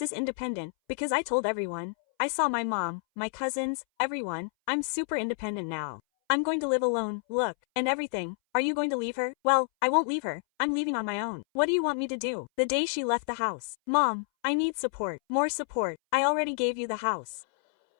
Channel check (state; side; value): silent; right; 59 dB below the other